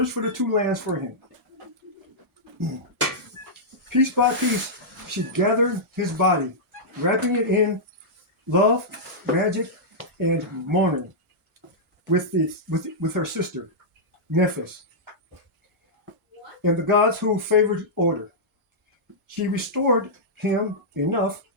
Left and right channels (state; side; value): normal; both; correlation -0.10